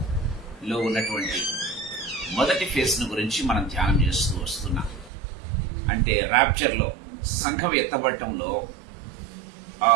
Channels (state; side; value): drops out; left; at 5.1 s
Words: ఉన్నటువంటి మొదటి ఫేజ్ను గురించి మనం ధ్యానం చేస్తూ వస్తున్నాం. అంటే ర్యాప్చర్లో సంఘం ఎత్తబడటంలో